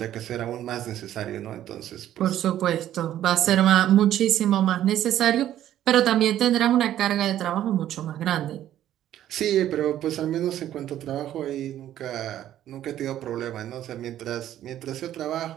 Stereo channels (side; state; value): left; quieter; 12.0 dB